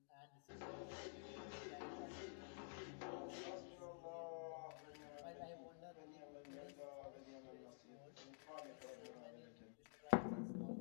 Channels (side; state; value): right; silent; digital silence